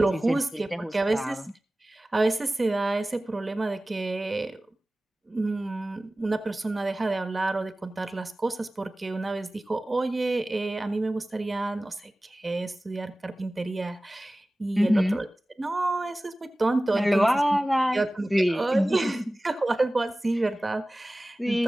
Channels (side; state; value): both; normal; correlation 0.97